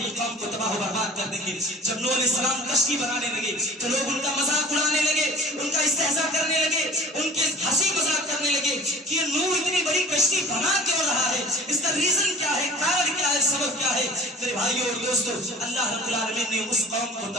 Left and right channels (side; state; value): both; normal; correlation 0.44